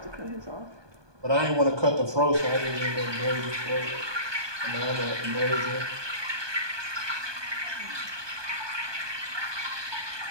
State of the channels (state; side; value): late; left; 1.2 ms